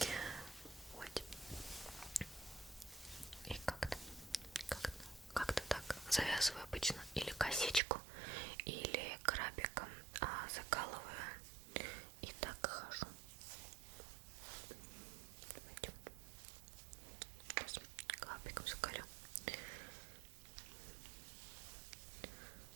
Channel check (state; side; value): drops out; left; at 7.8 s